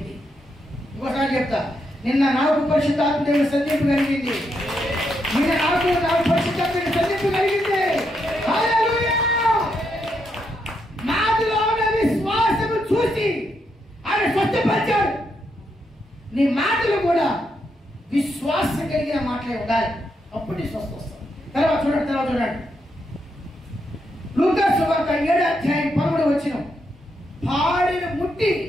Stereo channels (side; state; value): both; normal; correlation 0.80